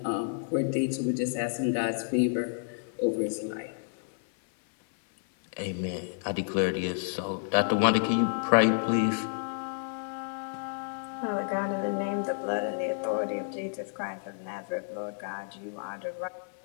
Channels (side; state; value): right; silent; 58 dB below the other